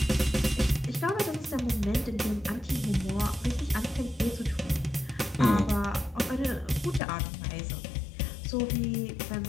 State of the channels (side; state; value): right; drops out; at 7.0 s